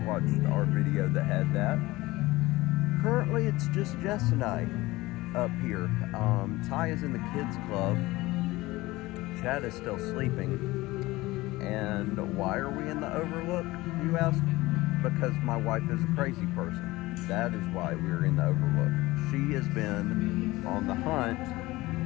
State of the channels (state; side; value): quieter; right; 19.6 dB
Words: watched our video that had that. Currently it's just Jess and I up here. Ty is in the kids club. Chad is still sleeping. And why are we in the Overlook, you ask? Because my wife is a crazy person. That is why we're in the Overlook. She has been on the hunt